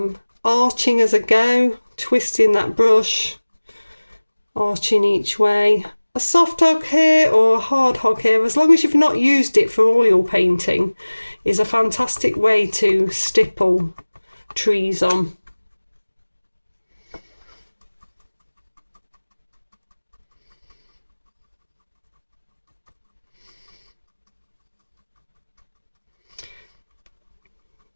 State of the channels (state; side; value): inverted; both; correlation -1.00